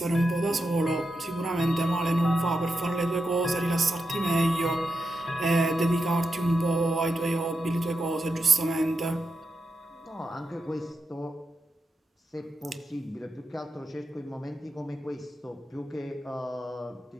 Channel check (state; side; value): normal; both; correlation 0.87